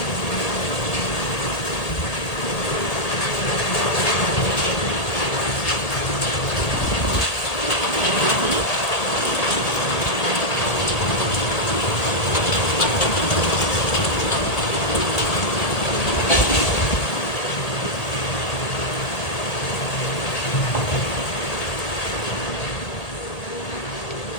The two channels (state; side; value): late; right; 1.8 ms